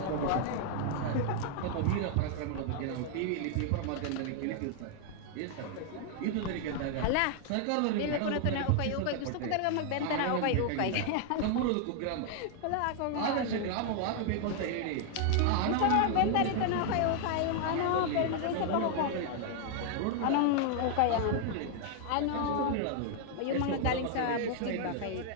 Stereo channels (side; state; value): both; different; correlation 0.00